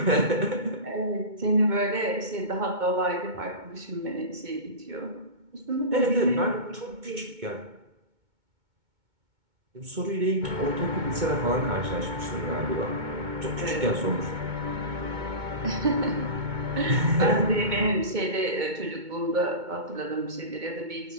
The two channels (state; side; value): late; left; 2.2 ms